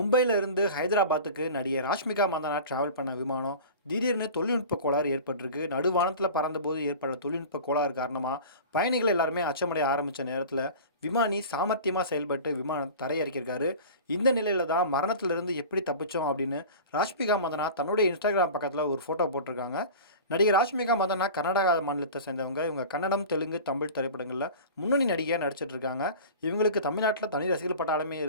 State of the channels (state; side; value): inverted; both; correlation -0.36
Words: இருந்து ஹைதராபாத்துக்கு நடிகை ராஷ்மிகா மந்தனா டிராவல் பண்ண விமானம் திடீர்னு தொழில்நுட்ப கோளாறு ஏற்பட்டிருக்கு. நடுவானத்தில் பறந்தபோது ஏற்பட்ட தொழில்நுட்ப கோளாறு காரணமாக பயணிகள் எல்லாருமே அச்சமடைய ஆரம்பித்த நேரத்தில் விமானி சாமர்த்தியமாக செயல்பட்டு விமானம் தரையிறக்கியிருக்காரு. இந்த நிலையில தான் மரணத்திலிருந்து எப்படி தப்பிச்சோம் அப்படின்னு ராஷ்மிகா மந்தனா தன்னுடைய இன்ஸ்டாகிராம் பக்கத்தில் ஒரு ஃபோட்டோ போட்டிருக்காங்க. நடிகை ராஷ்மிகா மந்தனா கர்நாடகா மாநிலத்தை சேர்ந்தவங்க. இவங்க கன்னடம், தெலுங்கு, தமிழ் திரைப்படங்களில் முன்னணி நடிகையாக நடிச்சிட்டு இருக்காங்க. இவங்களுக்கு தமிழ்நாட்டில் தனி ரசிகர்கள் பட்டாளமே